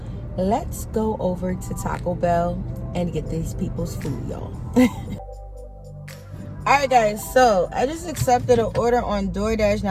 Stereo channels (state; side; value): identical; both; correlation 1.00